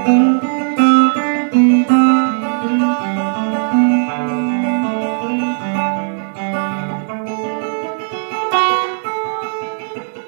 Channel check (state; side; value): silent; left; digital silence